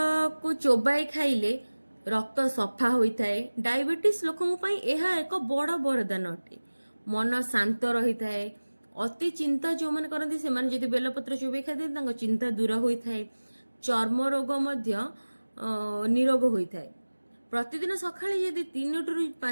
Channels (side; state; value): both; inverted; correlation -1.00